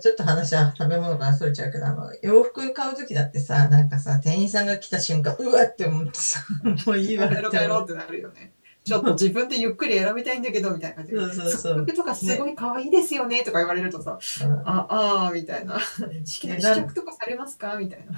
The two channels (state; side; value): inverted; both; correlation -1.00